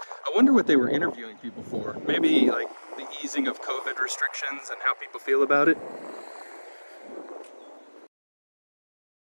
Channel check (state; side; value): inverted; both; correlation -1.00